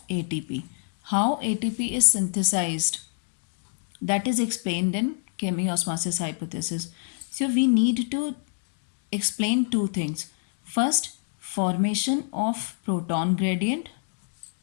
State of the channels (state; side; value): silent; right; digital silence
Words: ATP. How ATP is synthesized, that is explained in chemiosmosis hypothesis. So we need to explain two things. First, formation of proton gradient,